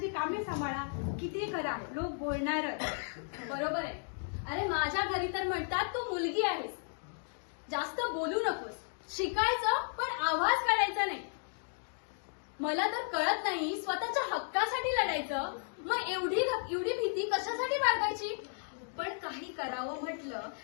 कामे सांभाळा, किती करा, लोक बोलणारच. बरोबर आहे. अरे माझ्या घरी तर म्हणतात तू मुलगी आहेस, जास्त बोलू नकोस, शिकायचं पण आवाज काढायचा नाही. मला तर कळत नाही स्वतःच्या हक्कासाठी लढायचं, मग एवढी भीती कशासाठी बाळगायची? पण काही करावं म्हटलं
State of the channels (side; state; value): right; silent; digital silence